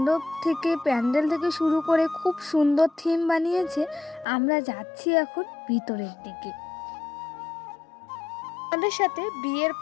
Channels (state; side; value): drops out; right; at 4.2 s